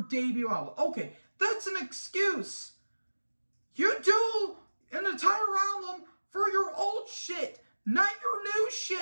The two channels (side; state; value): both; inverted; correlation -1.00